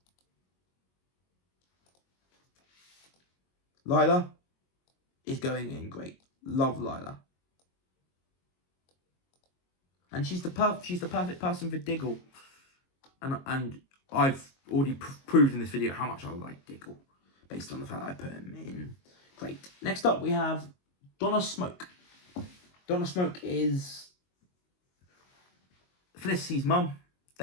Lila is going in great. Love Lila. And she's the perfect person for Diggle. And I've already proved in this video how much I like Diggle, based on the fact that I put him in great. Next up, we have Donna Smoke. Donna Smoke is Felicity's mum.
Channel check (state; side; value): late; right; 22 ms